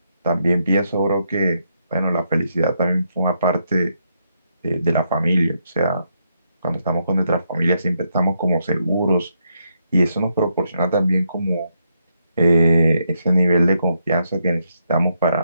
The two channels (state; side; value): inverted; both; correlation -0.79